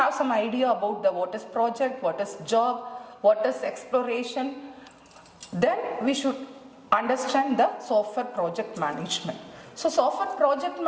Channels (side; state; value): both; identical; correlation 1.00